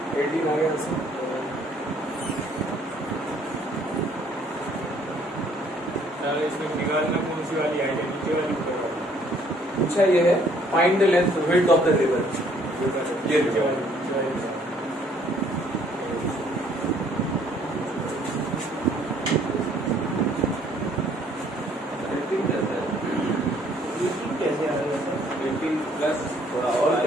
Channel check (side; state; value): both; normal; correlation 0.62